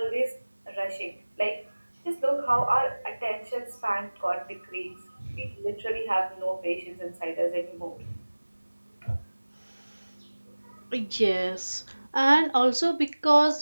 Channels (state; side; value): inverted; both; correlation -1.00